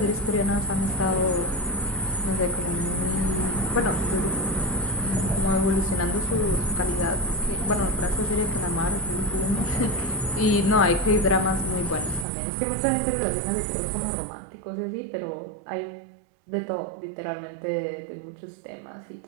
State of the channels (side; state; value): left; drops out; at 12.2 s